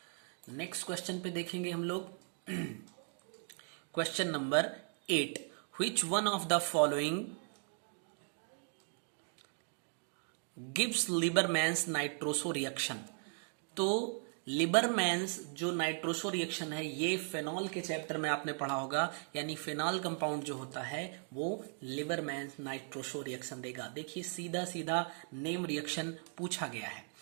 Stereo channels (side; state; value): left; silent; 53 dB below the other